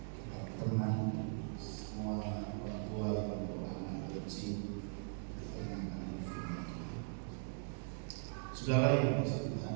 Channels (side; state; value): left; silent; digital silence